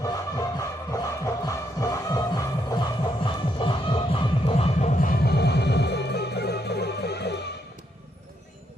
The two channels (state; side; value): normal; both; correlation 0.76